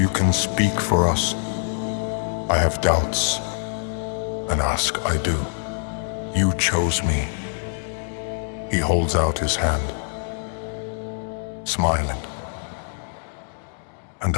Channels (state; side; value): silent; right; 62 dB below the other